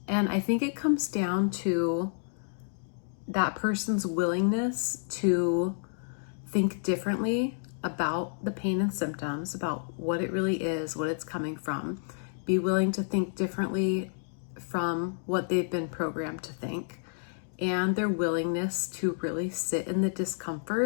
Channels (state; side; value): silent; right; digital silence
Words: I think it comes down to that person's willingness to think differently about the pain and symptoms, about what it really is, what it's coming from. Be willing to think differently from what they've been programmed to think, and their willingness to really sit in the